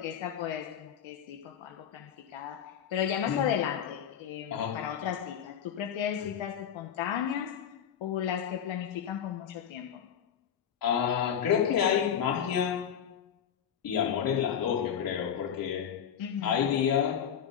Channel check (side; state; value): right; quieter; 8.6 dB